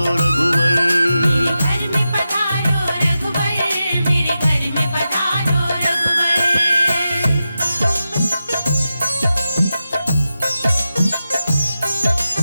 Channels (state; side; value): inverted; both; correlation -0.91